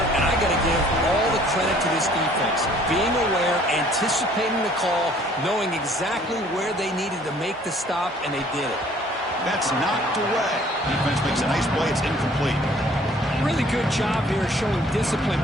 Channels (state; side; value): normal; both; correlation 0.57